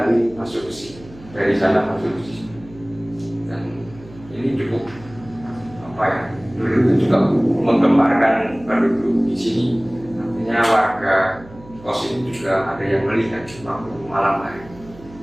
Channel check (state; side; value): noise; right; hum, 20 dB below the sound